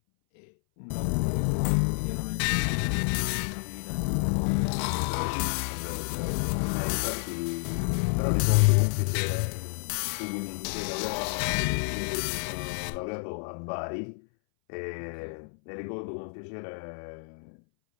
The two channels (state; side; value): silent; right; 59 dB below the other